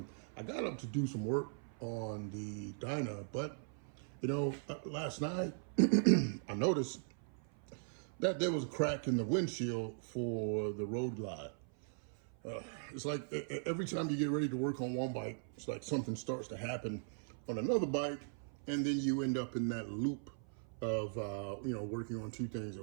I got up to do some work on the Dyna, but last night I noticed that there was a crack in the windshield for the Road Glide. It's like every time you get ready to work on one bike, it's like something starts to happen on another bike, and then you end up in that loop of working on two things at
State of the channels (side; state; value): left; silent; 52 dB below the other